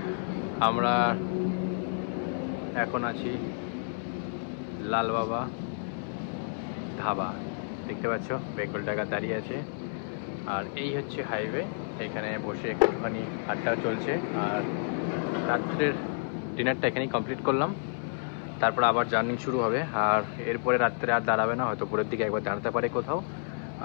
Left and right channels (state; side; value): silent; right; 58 dB below the other